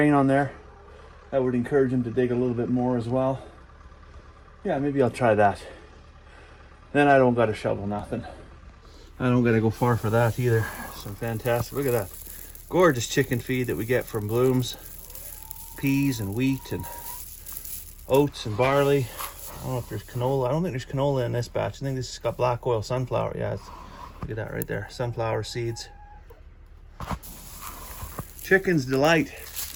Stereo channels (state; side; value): identical; both; correlation 1.00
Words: on there. That would encourage them to dig a little bit more as well. Yeah, maybe I'll try that. Then I don't gotta shovel nothing. I don't gotta go far for that either. Some fantastic, look at that. Gorgeous chicken feed that we get from Blooms. peas and wheat and oats and barley. I don't know if there's canola. I don't think there's canola in this batch. I think this has got black oil sunflower. Yeah, look at that right there. Sunflower seeds. Chicken's delight.